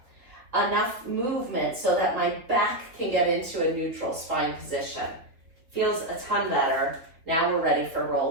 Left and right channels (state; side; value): late; left; 3.5 ms